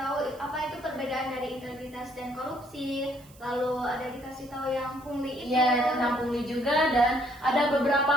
apa itu perbedaan dari integritas dan korupsi. Lalu ada dikasih tahu yang pungli itu. Iya, tentang pungli juga, dan ada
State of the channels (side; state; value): right; noise; hiss, 25 dB below the sound